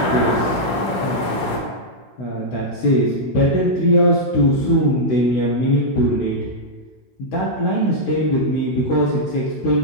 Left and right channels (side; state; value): right; late; 16 ms